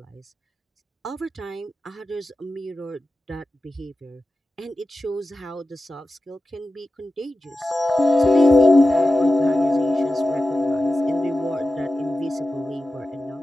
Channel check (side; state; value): both; normal; correlation 0.93